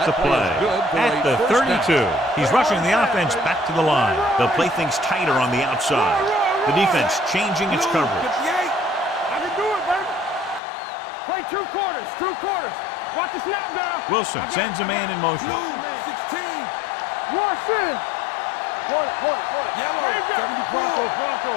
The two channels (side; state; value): right; drops out; at 10.6 s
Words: the play at the 32. He's rushing the offense back to the line. They'll play things tighter on the outside. The defense changing its coverage. I can do it, baby. Play 2 quarters. Watch the snap down. Wilson sends a man in motion. 16. Wash in. Yellow, 74. Bronco.